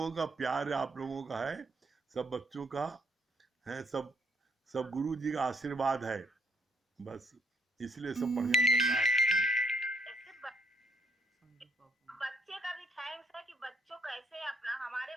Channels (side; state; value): both; normal; correlation 0.69